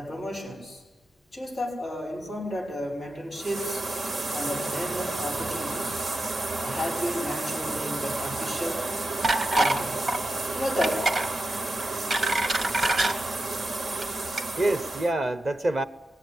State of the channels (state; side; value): normal; both; correlation 0.90